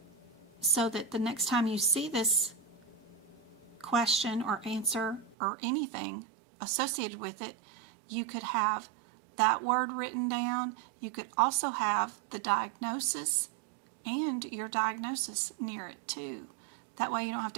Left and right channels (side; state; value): left; drops out; at 5.4 s